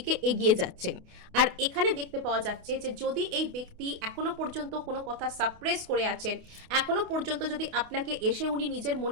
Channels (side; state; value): left; late; 28 ms